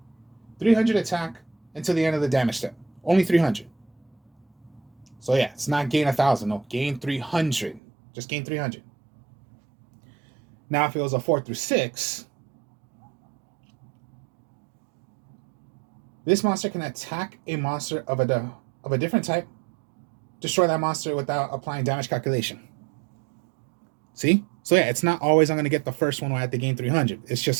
300 attack until the end of the damage step. Only 300. So yeah, it's not gain 1,000. No, gain 300. Just gain 300. Now, if it was a 4 through 6, this monster can attack a monster of a different type, destroy that monster without applying damage calculation. See? So yeah, it's not always I'm going to get the first one when I have to gain 300. It's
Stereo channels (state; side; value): drops out; left; at 7.8 s